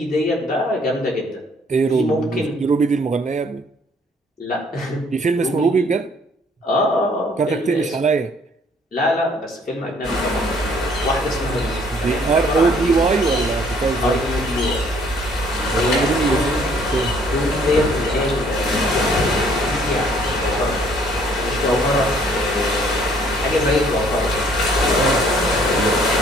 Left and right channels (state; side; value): normal; both; correlation 0.61